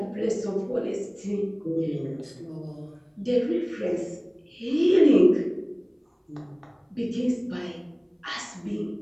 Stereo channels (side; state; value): both; identical; correlation 1.00